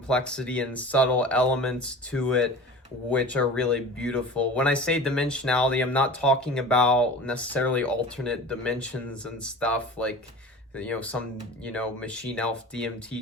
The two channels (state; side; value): normal; both; correlation 0.37